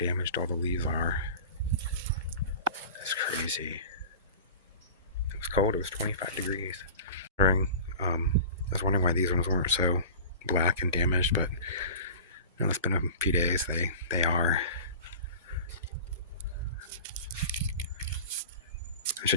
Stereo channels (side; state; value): both; inverted; correlation -0.36